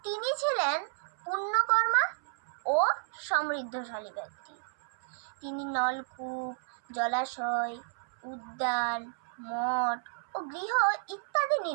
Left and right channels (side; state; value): left; silent; 57 dB below the other